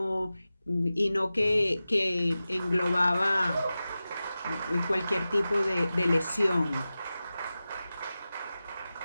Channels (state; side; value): inverted; both; correlation -0.94